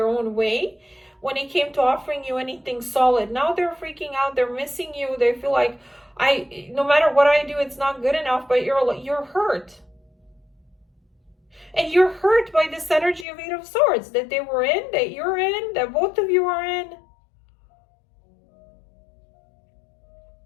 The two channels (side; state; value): right; drops out; at 13.2 s